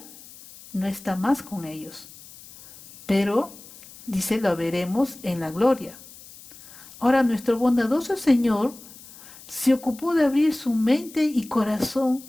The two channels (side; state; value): left; noise; hiss, 19 dB below the sound